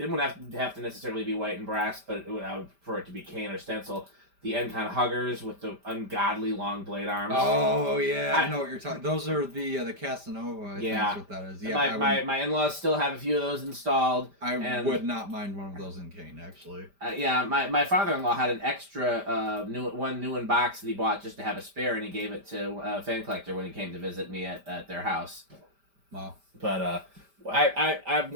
wouldn't have to necessarily be white and brass, but I would prefer it to be cane or stencil. The Encon Huggers with the ungodly long blade arms. Oh yeah, I know what you're talking. Those are the Casanova. I think Yeah. that's what that is. Yeah, My in-laws still have a few of those installed. I would not mind one of those in cane actually. Yeah, my father-in-law had an extra new in box that he bought just to have a spare, and he gave it to a fan collector when he came to visit me at their house. Wow. But I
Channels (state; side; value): late; left; 5.1 ms